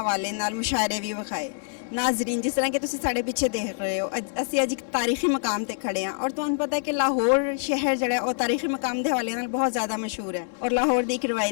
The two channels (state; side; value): silent; right; 61 dB below the other